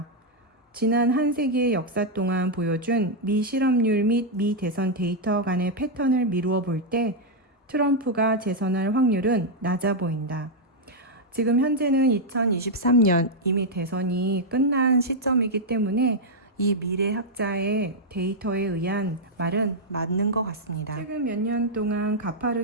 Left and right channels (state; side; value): normal; both; correlation -0.03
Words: 지난 한 세기의 역사 동안 보여준 미 실업률 및 미 대선 데이터 간의 패턴을 미루어 볼 때 트럼프가 재선할 확률은 낮아 보인다. 지금 현재는 2023년 이미 대선이 끝난 시점이기 때문에 이 미래학자의 데이터에 의한 말은 맞는 것 같습니다. 최근 몇 년 동안